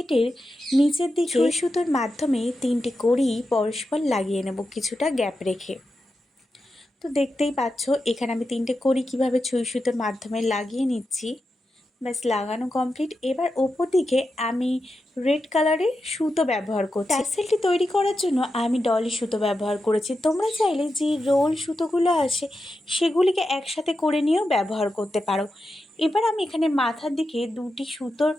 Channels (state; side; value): normal; both; correlation 0.89